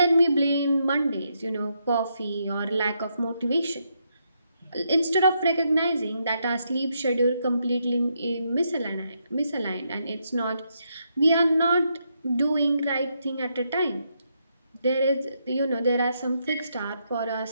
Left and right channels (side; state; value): both; inverted; correlation -0.79